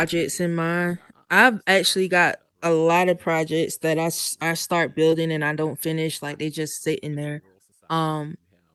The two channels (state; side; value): identical; both; correlation 1.00